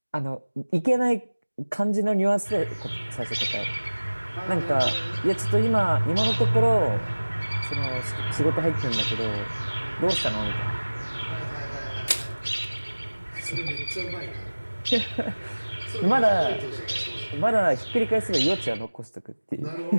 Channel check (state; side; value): inverted; both; correlation -1.00